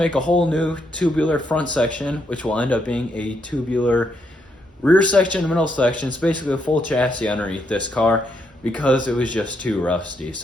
a whole new tubular front section, which will end up being a tubular rear section and middle section. It's basically a full chassis underneath this car because it was just too rusty.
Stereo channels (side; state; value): both; normal; correlation 0.77